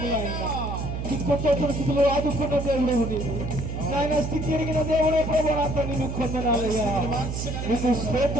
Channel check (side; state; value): right; noise; hum, 4 dB below the sound